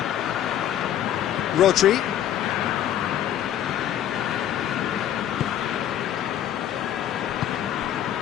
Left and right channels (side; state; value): right; quieter; 11.0 dB